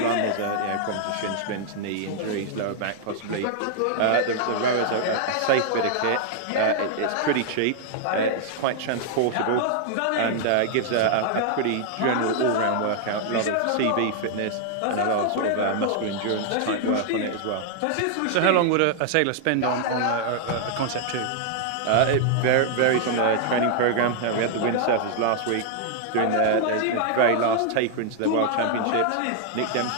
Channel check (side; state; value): both; different; correlation -0.01